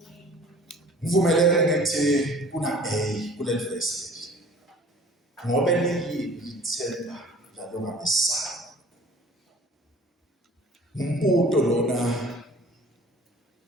ngivumelene ngithi kuna A kule verse ngoba lithemba lalo ngamesana umbuto lona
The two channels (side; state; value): both; normal; correlation 0.48